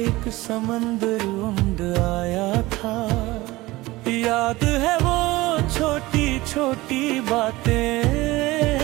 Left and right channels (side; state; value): left; quieter; 19.7 dB